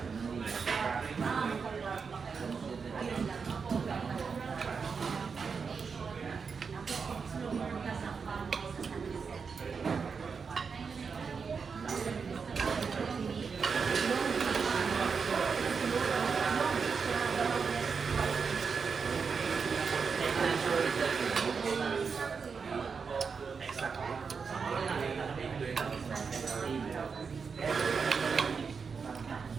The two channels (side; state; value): left; quieter; 5.5 dB